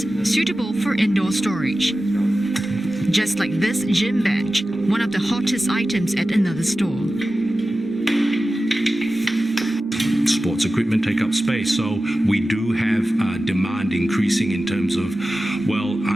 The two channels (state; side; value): normal; both; correlation 0.95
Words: suitable for indoor storage. Just like this gym bench, one of the hottest items at another store. Sports equipment take up space, so we do have demand increasing in terms of,